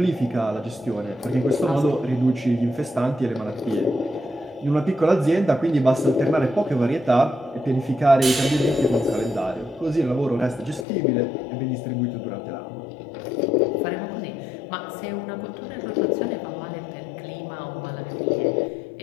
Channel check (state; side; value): drops out; right; at 10.9 s